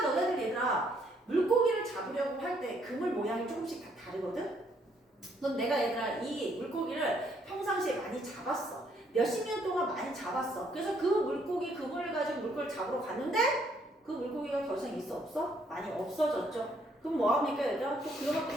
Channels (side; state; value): both; normal; correlation 0.69